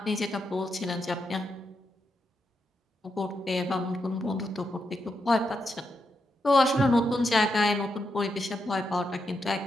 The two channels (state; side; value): normal; both; correlation 0.83